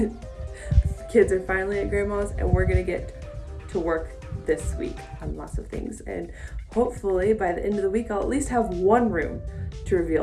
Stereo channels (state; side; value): identical; both; correlation 1.00